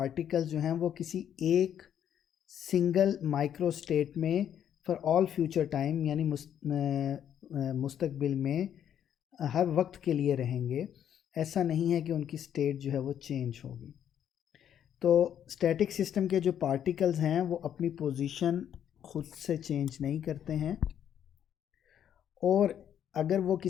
जो हैं वो किसी एक सिंगल माइक्रो स्टेट में फॉर ऑल फ्यूचर टाइम यानी मुस्तकबिल में हर वक्त के लिए रहेंगे। ऐसा नहीं है कि उनकी स्टेट जो है वो चेंज होगी। तो स्टैटिक सिस्टम के जो पार्टिकल्स हैं वो अपनी पोजीशन खुद से चेंज नहीं करते हैं, और अगर वो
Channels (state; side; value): quieter; right; 9.6 dB